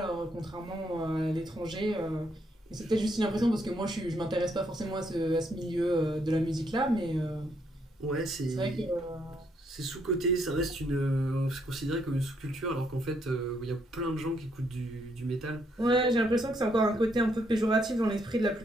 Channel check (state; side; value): normal; both; correlation 0.73